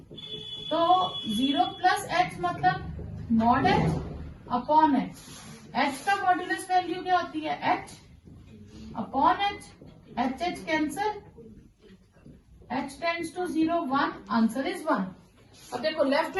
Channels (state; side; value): identical; both; correlation 1.00